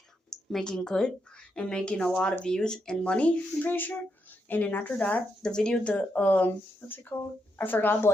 making good and making a lot of views and money, I'm pretty sure. And then after that, the video, what's it called? I forgot,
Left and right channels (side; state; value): both; normal; correlation 0.82